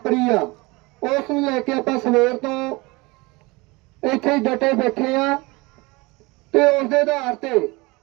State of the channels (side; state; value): left; quieter; 24.2 dB